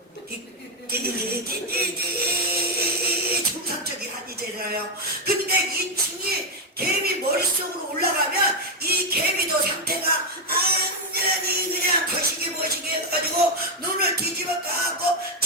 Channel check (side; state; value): both; normal; correlation 0.03